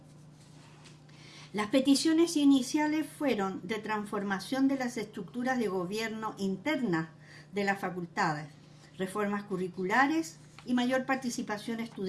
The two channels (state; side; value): identical; both; correlation 1.00